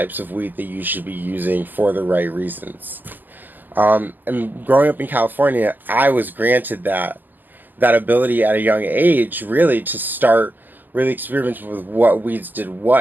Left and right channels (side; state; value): left; late; 0.087 ms